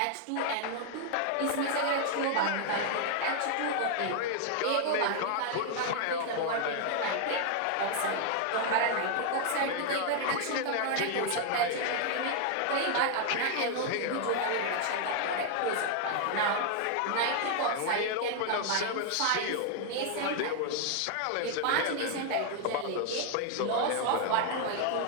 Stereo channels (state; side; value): different; both; correlation 0.00